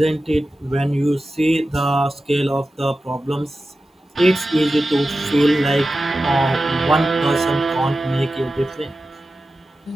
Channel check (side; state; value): both; normal; correlation 0.93